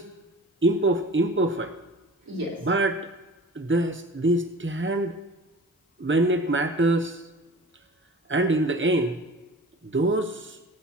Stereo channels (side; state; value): both; normal; correlation 0.40